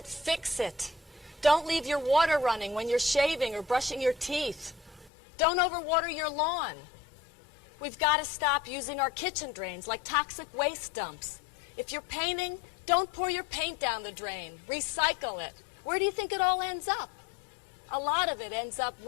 fix it. Don't leave your water running when you're shaving or brushing your teeth. Don't overwater your lawn. We've got to stop using our kitchen drains like toxic waste dumps. If you're painting, don't pour your paint down the drain. Recycle it. Where do you think it all ends up? A lot of it ends up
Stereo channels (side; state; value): right; drops out; at 5.1 s